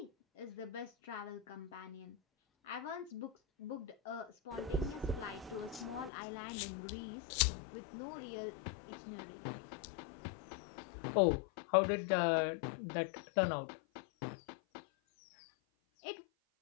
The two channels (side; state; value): right; drops out; at 6.1 s